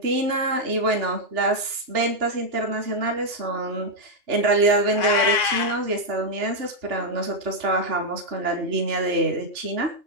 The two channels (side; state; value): left; late; 2.8 ms